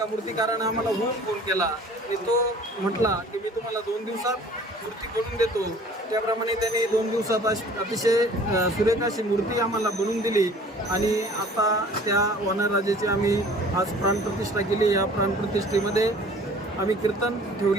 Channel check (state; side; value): normal; both; correlation 0.49